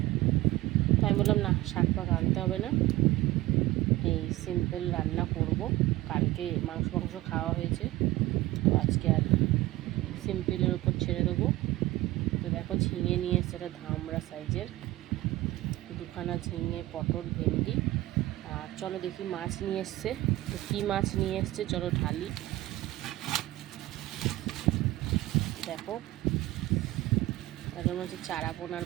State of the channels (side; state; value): left; quieter; 17.4 dB